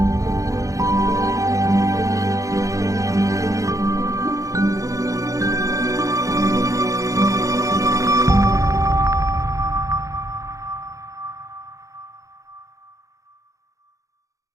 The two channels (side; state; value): left; late; 0.16 ms